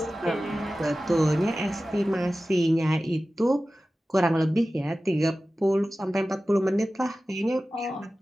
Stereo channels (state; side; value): normal; both; correlation 0.95